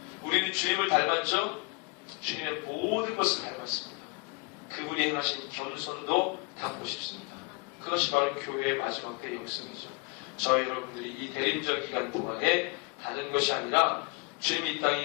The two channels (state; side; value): quieter; right; 29.0 dB